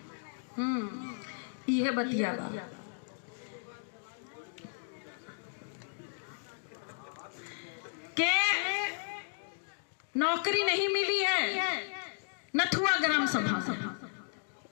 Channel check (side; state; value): right; silent; digital silence